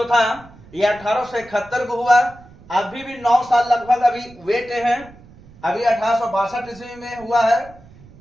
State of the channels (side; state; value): right; noise; rumble, 23 dB below the sound